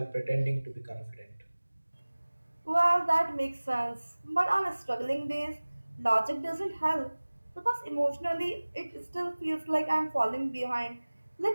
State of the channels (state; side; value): inverted; both; correlation -1.00